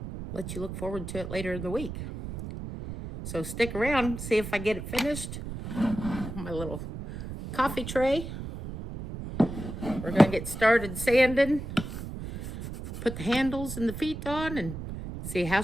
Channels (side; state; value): right; noise; rumble, 8 dB below the sound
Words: let you look forward to it later in the week. So stick around, see if I get it finished. My little coffee tray. We're gonna get started sanding, put the handles and the feet on, and see how